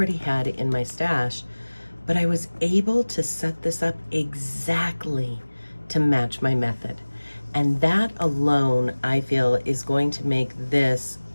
had in my stash. But I was able to set this up exactly to match my method. And that alone, I feel, is going to make this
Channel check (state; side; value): inverted; both; correlation -1.00